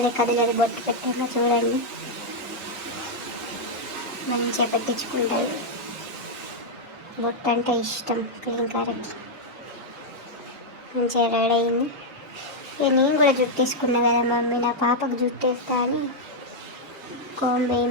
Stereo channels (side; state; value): both; normal; correlation -0.02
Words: కదలదు బొట్టు పెట్టాక. చూడండి మంచిగా పెట్టించుకుంటుంది. బొట్టు అంటే ఇష్టం క్లీంకర్కి. మంచిగా రెడీ అయింది. ఇక నేను కూడా జుట్టు తీసుకున్నా కదా మమ్మీ, నా పాపకు జుట్టు వేస్తా అని కోంబు